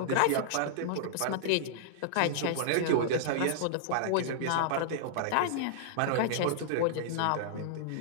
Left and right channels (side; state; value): both; different; correlation -0.01